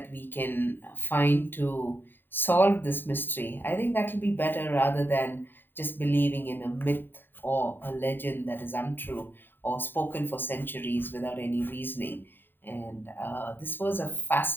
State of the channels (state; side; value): late; right; 0.095 ms